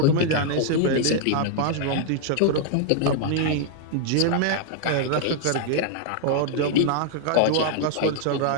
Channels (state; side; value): different; both; correlation 0.00